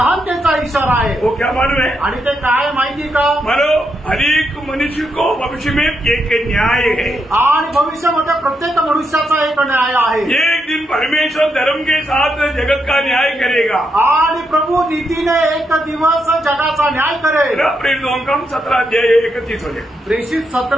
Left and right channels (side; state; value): both; normal; correlation 0.81